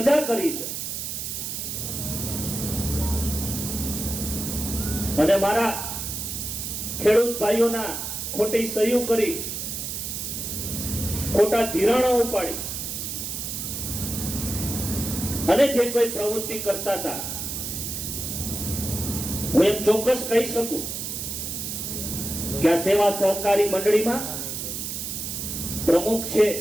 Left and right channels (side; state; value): right; noise; hiss, 4 dB below the sound